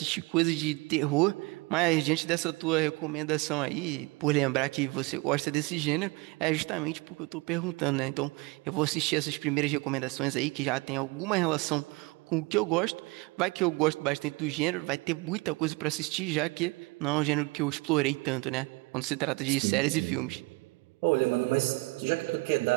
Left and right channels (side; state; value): left; quieter; 25.4 dB